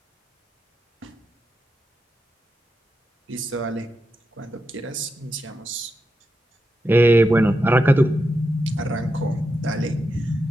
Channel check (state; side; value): normal; both; correlation 0.87